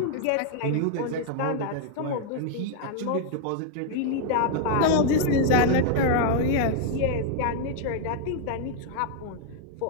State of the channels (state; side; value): different; both; correlation 0.00